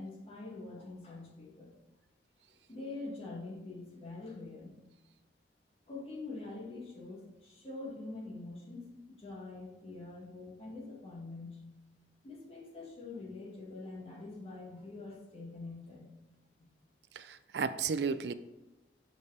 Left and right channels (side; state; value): both; normal; correlation 0.34